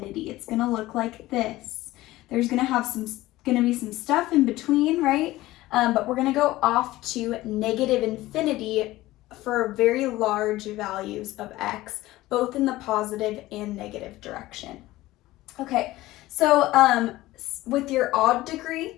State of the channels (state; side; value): quieter; right; 17.3 dB